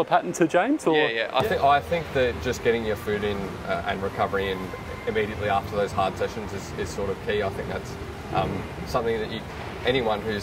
pattern to James? Or? Yeah. I think that just getting your food in and recovery in immediately after those hard sessions is sort of key. I think that's something that anyone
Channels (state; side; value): identical; both; correlation 1.00